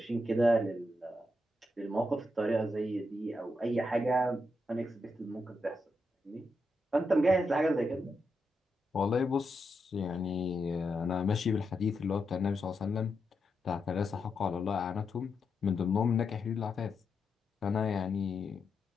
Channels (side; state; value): both; normal; correlation 0.84